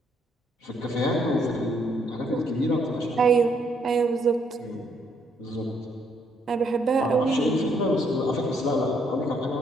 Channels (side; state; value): both; normal; correlation 0.70